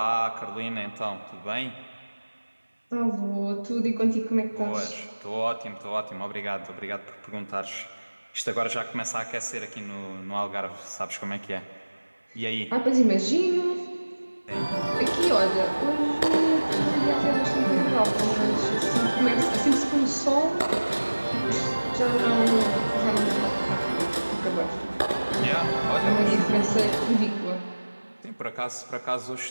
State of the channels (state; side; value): inverted; both; correlation -1.00